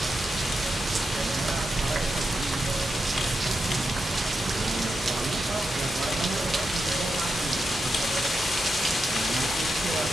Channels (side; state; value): both; normal; correlation 0.87